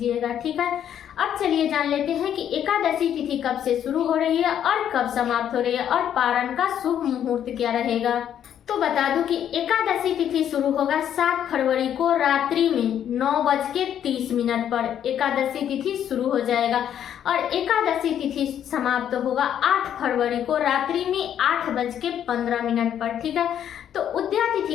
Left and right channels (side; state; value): right; quieter; 9.8 dB